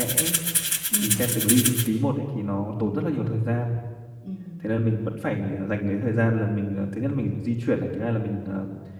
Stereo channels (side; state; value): both; identical; correlation 1.00